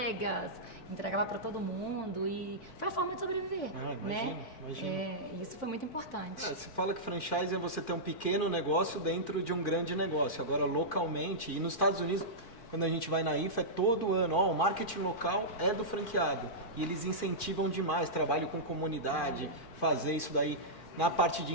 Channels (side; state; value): right; late; 4.6 ms